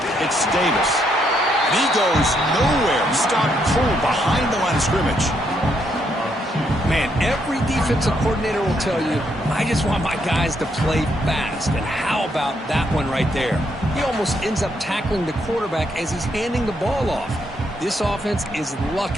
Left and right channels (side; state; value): both; normal; correlation 0.75